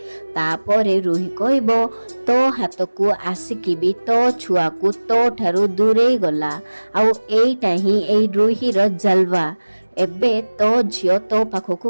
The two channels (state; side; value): inverted; both; correlation -1.00